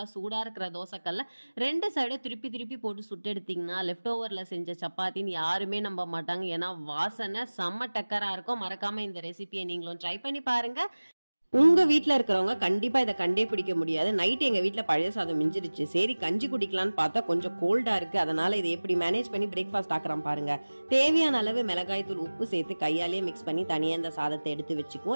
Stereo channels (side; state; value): both; inverted; correlation -1.00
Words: சூடா இருக்கிற தோசைக்கல்ல 2 சைடும் திருப்பி திருப்பி போட்டு சுட்டு எடுத்தீங்கன்னா லெஃப்ட் ஓவர்ல செஞ்ச சப்பாத்தின்னு யாருமே நம்ப மாட்டாங்க. ஏன்னா வாசனை செம்ம டக்கரா இருக்கும். மறக்காம இந்த ரெசிபியை நீங்களும் ட்ரை பண்ணி பாருங்க. உங்க வீட்ல இருக்கிறவங்க கண்டிப்பா இதை கண்டே பிடிக்க முடியாது. நைட் எங்க வீட்ல பழைய சாதம் மிஞ்சிருச்சு, சரி கஞ்சி குடிக்கலான்னு பார்த்தா கொஞ்சம் கோல்டா இருக்கு, அதனால இதை எப்படி மேனேஜ் பண்ணி பிரேக்ஃபாஸ்ட் ஆக்குறோம் பாருங்க. தேவையான அளவு மிளகாய் தூள், உப்பு சேர்த்து கையாலேயே மிக்ஸ் பண்ணி தனியா இந்த சாதத்தை எடுத்து